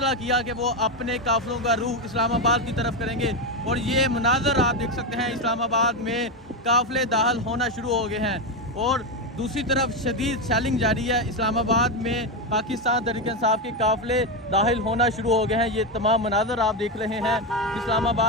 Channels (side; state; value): both; normal; correlation 0.10